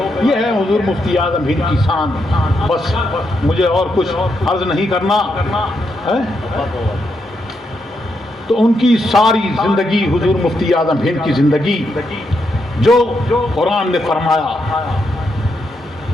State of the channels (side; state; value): both; normal; correlation 0.81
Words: یہ ہے حضور مفتی اعظم ہند کی شان. بس مجھے اور کچھ عرض نہیں کرنا ہے. تو ان کی ساری زندگی, حضور مفتی اعظم ہند کی زندگی جو قرآن نے فرمایا,